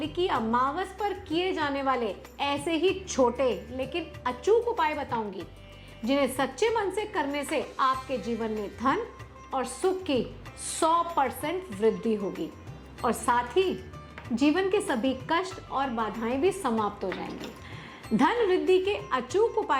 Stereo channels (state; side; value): identical; both; correlation 1.00